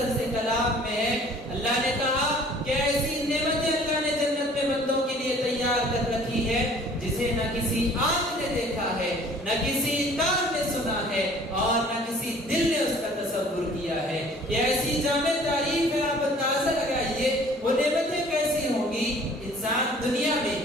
سے کلام میں ہے۔ اللہ نے کہا کہ ایسی نعمتیں اللہ نے جنت میں بندوں کے لیے تیار کر رکھی ہے جسے نہ کسی آنکھ نے دیکھا ہے، نہ کسی کان نے سنا ہے، اور نہ کسی دل نے اس کا تصور کیا ہے۔ یہ ایسی جامع تعریف ہے، آپ اندازہ لگائیے وہ نعمتیں کیسی ہوں گی۔ انسان دنیا میں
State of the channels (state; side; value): normal; both; correlation 0.52